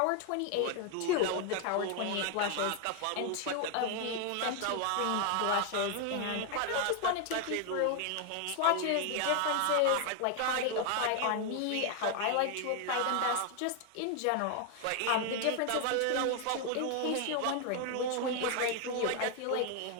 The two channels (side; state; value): both; different; correlation 0.01